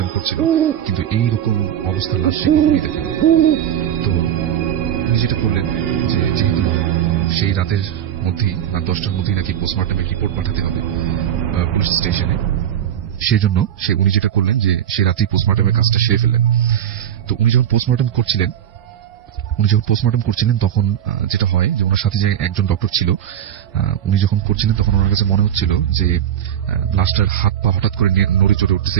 করছিল, কিন্তু এইরকম অবস্থার লাশ সে কখনই দেখেনি। তো উনি যেটা করলেন যে যেহেতু সেই রাতের মধ্যেই, রাত 10টার মধ্যেই নাকি পোস্টমর্টমের রিপোর্ট পাঠাতে হবে পুলিশ স্টেশনে, সেই জন্য উনি যেটা করলেন যে সে রাতেই পোস্টমর্টমের কাজটা সেরে ফেললেন। তো উনি যখন পোস্টমর্টম করছিলেন তখন যেটা হয় যে ওনার সাথে যে একজন ডক্টর ছিল, উনি যখন করছিলেন তখন ওনার কাছে মনে হচ্ছিল যে লাশটার হাত পা হঠাৎ করে নড়ে চড়ে উঠতেছে,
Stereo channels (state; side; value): quieter; left; 10.2 dB